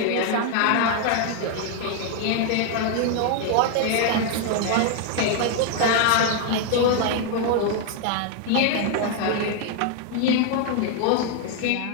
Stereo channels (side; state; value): both; different; correlation 0.00